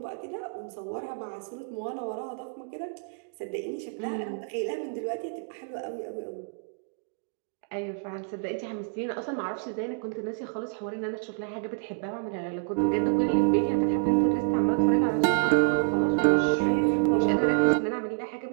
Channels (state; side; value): silent; left; digital silence